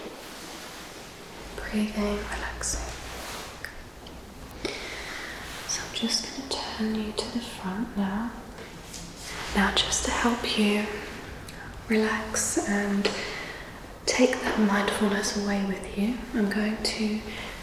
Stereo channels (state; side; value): identical; both; correlation 1.00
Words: Breathing, relaxing. So I'm just going to turn you to the front now. Now just to help you relax and take that mindfulness away with you, I'm going to